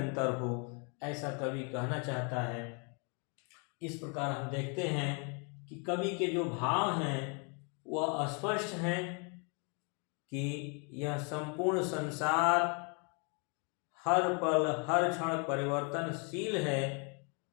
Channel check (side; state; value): right; quieter; 36.3 dB